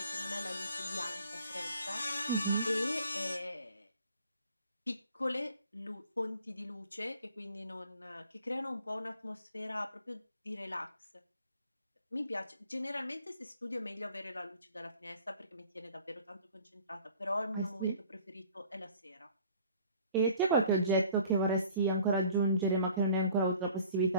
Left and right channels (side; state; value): both; inverted; correlation -0.52